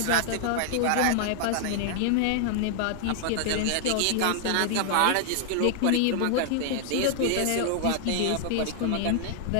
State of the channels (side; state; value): both; different; correlation -0.01